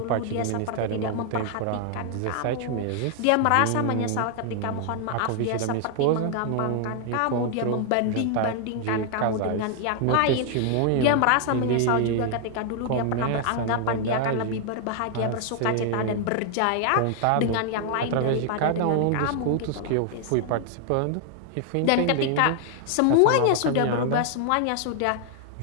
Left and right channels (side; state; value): both; different; correlation 0.00